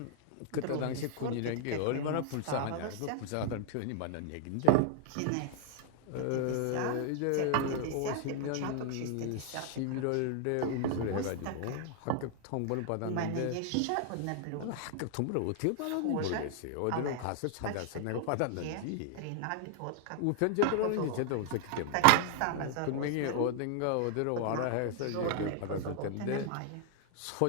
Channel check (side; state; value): both; different; correlation 0.00